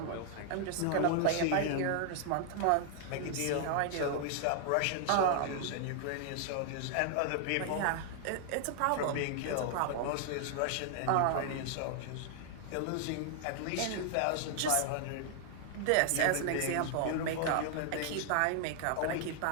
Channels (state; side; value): different; both; correlation 0.00